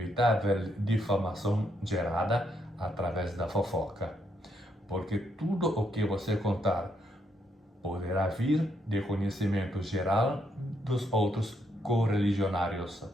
difamação gerada através da fofoca, porque tudo o que você contar poderá vir de conhecimento geral dos outros correligionários.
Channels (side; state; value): both; normal; correlation 0.76